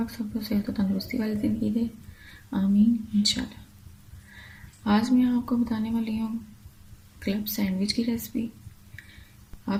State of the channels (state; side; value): identical; both; correlation 1.00